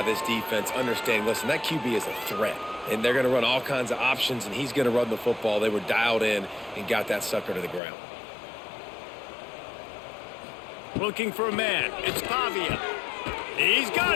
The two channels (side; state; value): right; drops out; at 7.8 s